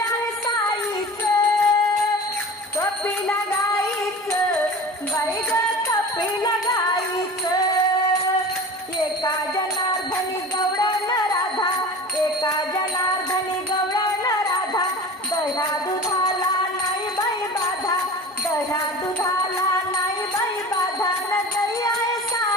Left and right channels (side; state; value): both; normal; correlation 0.36